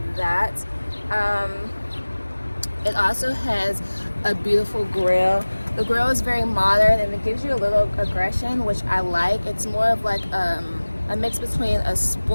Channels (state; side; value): inverted; both; correlation -1.00